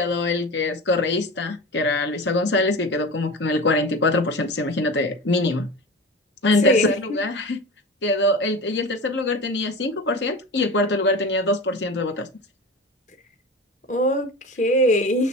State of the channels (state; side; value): normal; both; correlation 0.31